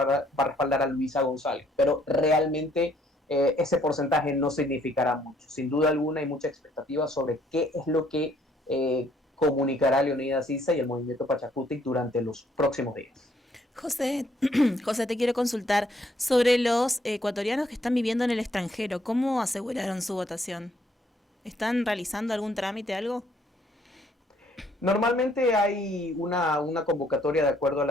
respaldar a Luisa González, pero realmente ese porcentaje no significará mucho. Sin duda alguna hay mucha expectativa sobre qué es lo que comunicará Leonidas Issa y el movimiento Pachacutic durante los próximos días. José, José, te quiero consultar sobre los ecuatorianos que están viviendo en el extranjero. ¿Cómo aseguraron su votación? ¿Están realizando algún trámite, algo? Normalmente hay una convocatoria de acuerdo a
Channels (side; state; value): both; normal; correlation 0.66